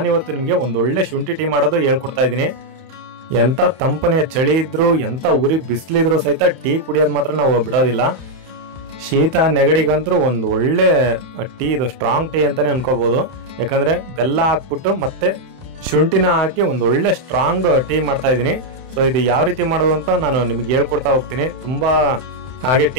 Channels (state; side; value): late; left; 31 ms